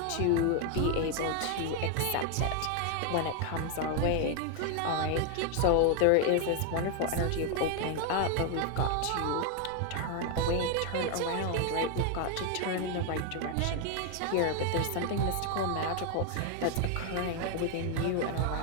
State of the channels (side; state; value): both; different; correlation 0.01